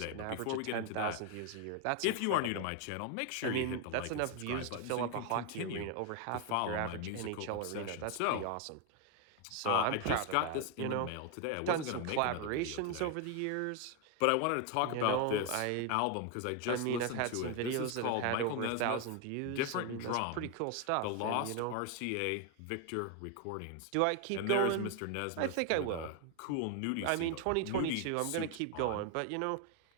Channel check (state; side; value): different; both; correlation 0.01